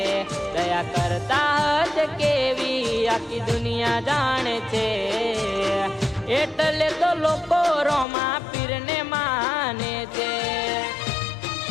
દયા કરતા હશે કેવી આખી દુનિયા જાણે છે। એટલે તો લોકો રોમા પીરને માને છે।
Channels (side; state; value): right; drops out; at 8.1 s